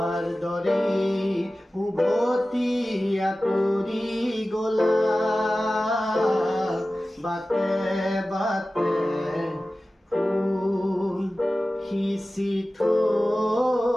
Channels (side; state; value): both; normal; correlation 0.96